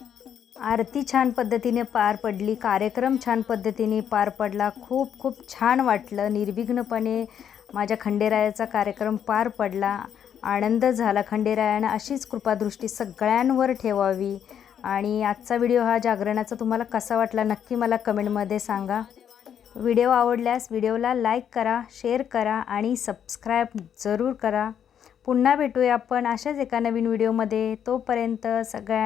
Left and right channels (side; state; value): right; quieter; 8.8 dB